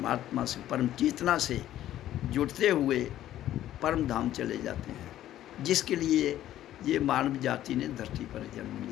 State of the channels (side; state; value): right; quieter; 12.8 dB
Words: से, परम चेतना से जुड़ते हुए परम धाम चले जाते हैं, जिसके लिए ये मानव जाति ने धरती पर जन्म